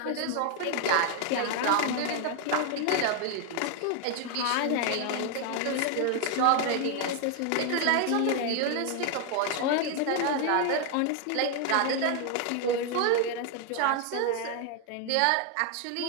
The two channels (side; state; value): both; different; correlation 0.00